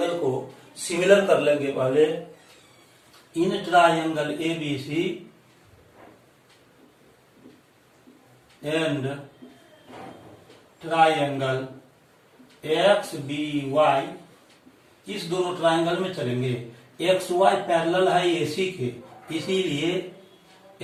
को सिमिलर कर लेंगे. पहले इन triangle ABC and triangle XBY इस दोनों ट्राइंगल में चलेंगे. XY पैरेलल है AC के, इसीलिए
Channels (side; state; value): both; identical; correlation 1.00